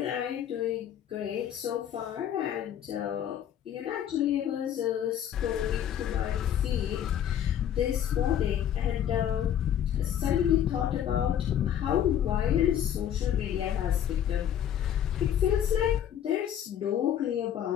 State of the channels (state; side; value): quieter; right; 10.0 dB